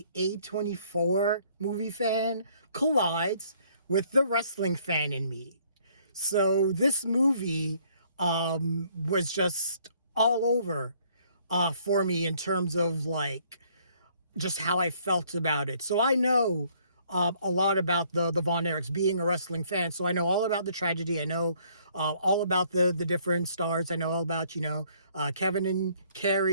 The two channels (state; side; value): inverted; both; correlation -0.63